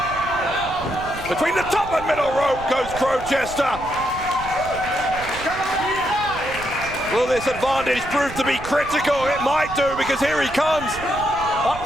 Between the top and middle rope goes Crowchester. Will this advantage prove to be critical? It might do, because here he comes up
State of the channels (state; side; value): noise; right; rumble, 13 dB below the sound